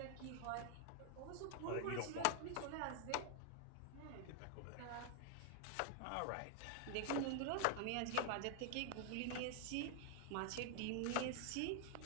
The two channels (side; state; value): both; different; correlation 0.00